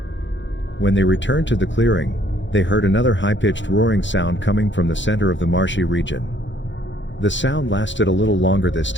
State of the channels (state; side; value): late; right; 0.54 ms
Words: When they returned to the clearing, they heard another high-pitched roaring sound coming from the center of the marshy region. The sound lasted a little longer this